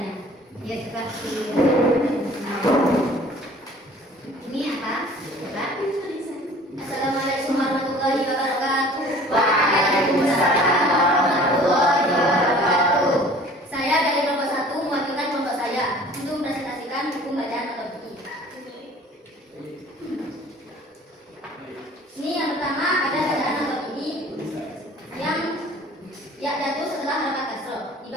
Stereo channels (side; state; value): both; normal; correlation 0.48